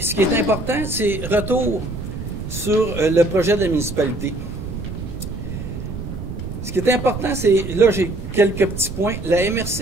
qui est important, c'est retour sur le projet de la municipalité. Ce qui est important, c'est... Là, j'ai quelques petits points. La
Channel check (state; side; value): noise; right; rumble, 7 dB below the sound